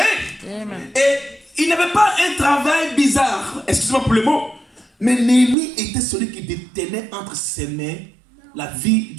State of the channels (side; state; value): left; drops out; at 5.6 s